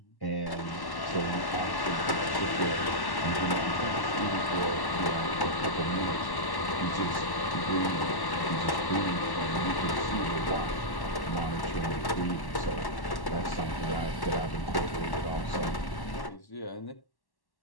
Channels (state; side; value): late; right; 1.1 ms